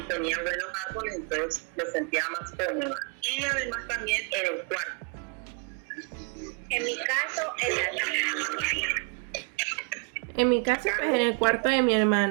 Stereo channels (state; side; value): quieter; left; 36.3 dB